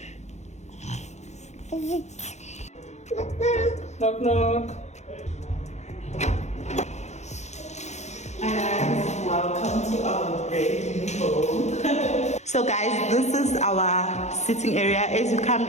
Knock knock. And welcome to our brand new home. So guys, this is our sitting area. As you come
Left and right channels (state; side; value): late; right; 0.33 ms